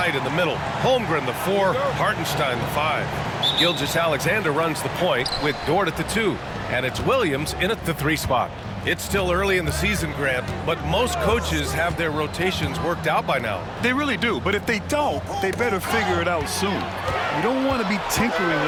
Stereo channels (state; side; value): identical; both; correlation 1.00